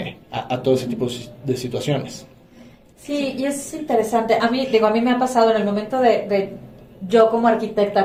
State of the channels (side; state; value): both; identical; correlation 1.00